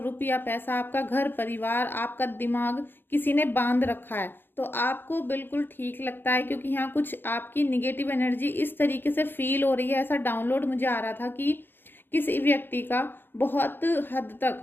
पैसा, आपका घर परिवार, आपका दिमाग किसी ने बांध रखा है? तो आपको बिल्कुल ठीक लगता है, क्योंकि यहाँ कुछ आपकी निगेटिव एनर्जी इस तरीके से फील हो रही है। ऐसा डाउनलोड मुझे आ रहा था कि किसी व्यक्ति का बहुत हद तक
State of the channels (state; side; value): late; right; 0.099 ms